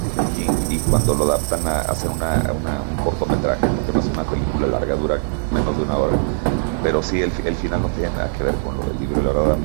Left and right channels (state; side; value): silent; left; 57 dB below the other